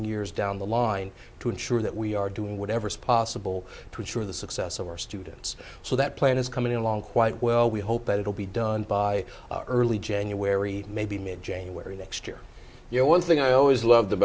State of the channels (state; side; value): identical; both; correlation 1.00